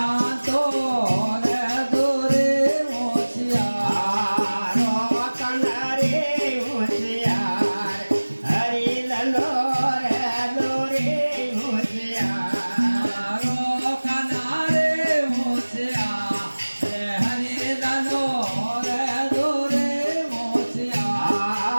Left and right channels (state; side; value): inverted; both; correlation -1.00